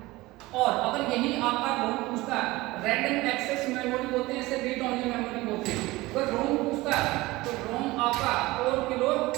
और अगर यही आपका रोम पूछता है, रैंडम एक्सेस मेमोरी बोलते हैं इसे, रीड ओनली मेमोरी बोलते हैं। अगर रोम पूछता है तो रोम आपका 4 किलो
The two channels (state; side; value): quieter; left; 20.1 dB